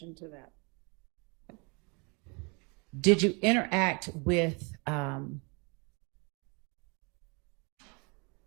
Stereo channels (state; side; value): quieter; left; 32.2 dB